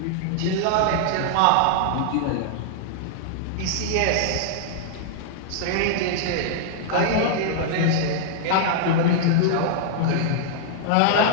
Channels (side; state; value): both; different; correlation -0.01